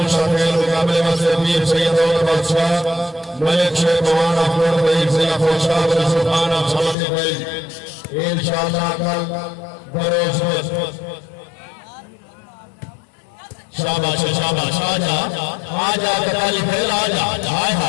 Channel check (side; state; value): right; drops out; at 7.0 s